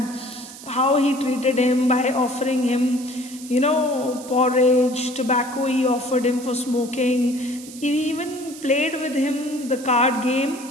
How he treated him by offering him, porridge, tobacco he offered him for smoking. He even played with him the card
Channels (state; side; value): noise; right; hiss, 16 dB below the sound